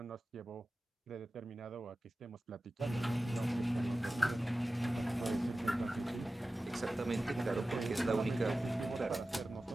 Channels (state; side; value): normal; both; correlation 0.95